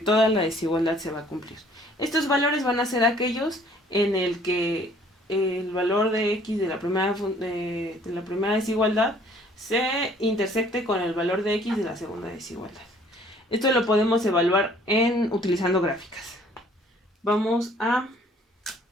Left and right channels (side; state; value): both; normal; correlation 0.57